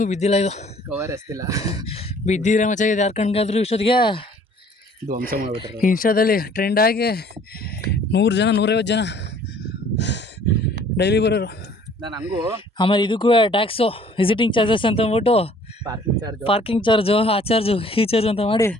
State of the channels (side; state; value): both; normal; correlation 0.55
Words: ಬಿದ್ದಿಲ್ಲ. ಇದು ಕವರ್ ಎಸ್ತಿಲ್ಲ, ಬಿದ್ದಿದ್ರೆ ಮಚ್ಚ ಇದು ಯಾರ ಕಣ್ಗಾದ್ರೂ ಇಷ್ಟೊತ್ತಿಗೆ ಧ್ವಂಸ ಮಾಡಿಬಿಟ್ರೆ. ಇನ್ಸ್ಟಾದಲ್ಲಿ ಟ್ರೆಂಡ್ ಆಗಿ 100 ಜನ 150 ಜನ ಡೈಲಿ ಬರೋರು. ನಾನು ಹಂಗೂ ಆಮೇಲೆ ಇದಕ್ಕೂ ಟ್ಯಾಕ್ಸು, ವಿಸಿಟಿಂಗ್ ಚಾರ್ಜಸ್ ಅಂತ ಅಂದ್ಬಿಟ್ಟು ಪಾರ್ಕಿಂಗ್ ಚಾರ್ಜು, ಆ ಚಾರ್ಜು, ಈ ಚಾರ್ಜ್ ಅಂತ ಮಾಡಿ